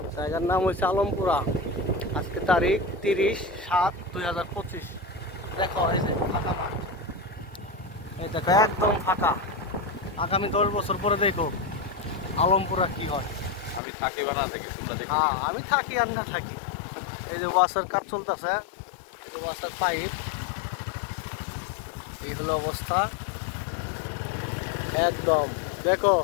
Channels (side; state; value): right; drops out; at 13.8 s